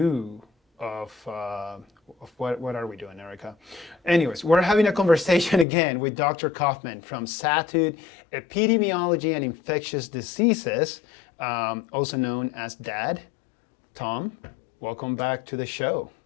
of what are we doing, Erica? Anyways, we're having a conversation again with Dr. Coffman from Satud Epidemiology and Infectious Diseases, also known as Dad. Tom, welcome back to the show.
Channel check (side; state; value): right; drops out; at 5.7 s